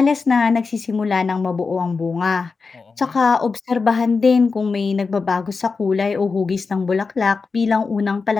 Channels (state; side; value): quieter; right; 4.6 dB